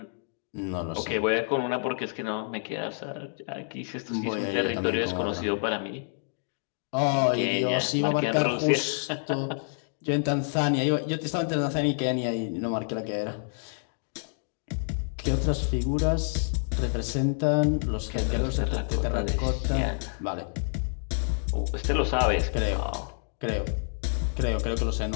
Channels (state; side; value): silent; right; digital silence